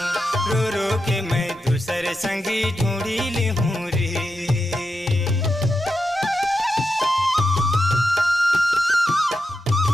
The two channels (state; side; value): normal; both; correlation 0.88